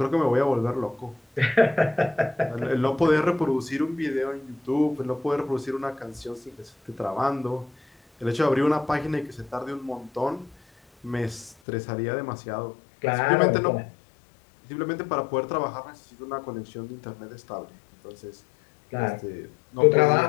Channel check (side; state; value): right; drops out; at 11.6 s